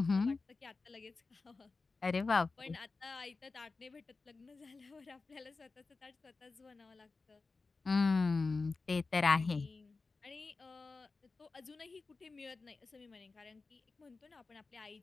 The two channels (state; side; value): quieter; right; 4.0 dB